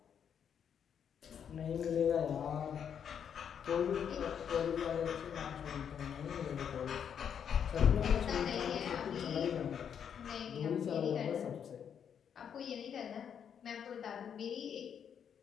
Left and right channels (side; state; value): right; quieter; 8.1 dB